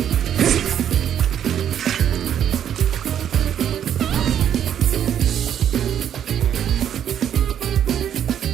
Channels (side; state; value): left; quieter; 9.6 dB